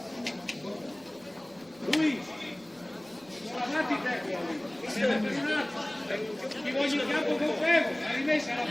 Lui, guardate i tecnici. Ti voglio in campo con fermo, la rimessa la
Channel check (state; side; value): noise; right; rumble, 29 dB below the sound